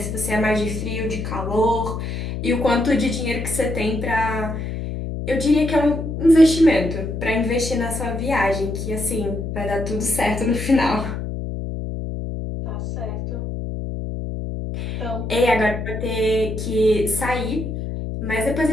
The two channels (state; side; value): noise; left; hum, 5 dB below the sound